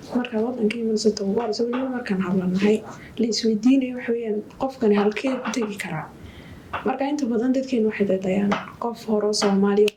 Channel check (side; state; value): both; identical; correlation 1.00